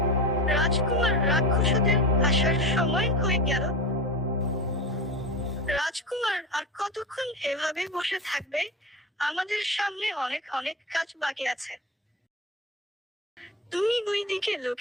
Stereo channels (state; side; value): normal; both; correlation 0.24